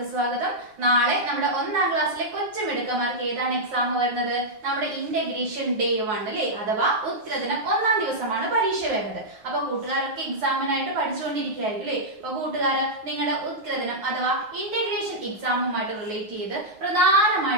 സ്വാഗതം. നാളെ നമ്മുടെ 1ാം ക്ലാസ്സിലെ കൊച്ചുമിടുക്കന്മാർക്ക് ഏതാണ് എക്സാം വരുന്നത്? നമ്മുടെ ഇന്റഗ്രേഷൻ ഡേ 1 അല്ലേ, അഥവാ ഉത്തരദിനം 1ാം ദിവസമാണ് പരീക്ഷ വരുന്നത്. അപ്പൊ കൂട്ടുകാരൊക്കെ എക്സാമിനായിട്ട് പഠിച്ചുകൊണ്ടിരിക്കുകയായിരിക്കും അല്ലേ. അപ്പൊ കൂട്ടുകാര് നിങ്ങളുടെ ഉത്തരദിനം അഥവാ ഇന്റഗ്രേഷൻ എക്സാമുമായിട്ട് റിലേറ്റ് ചെയ്ത്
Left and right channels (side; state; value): left; late; 9.4 ms